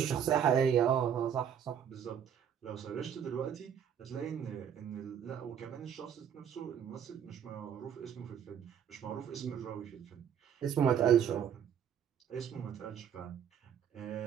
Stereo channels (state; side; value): quieter; left; 8.6 dB